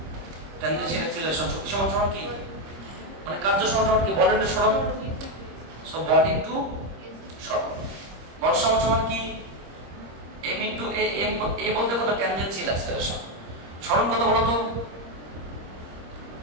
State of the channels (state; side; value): late; left; 26 ms